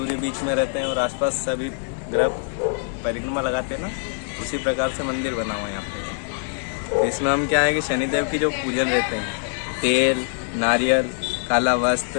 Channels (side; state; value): right; silent; 63 dB below the other